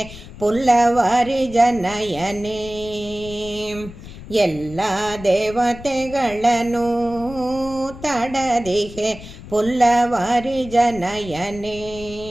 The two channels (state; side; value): noise; left; rumble, 15 dB below the sound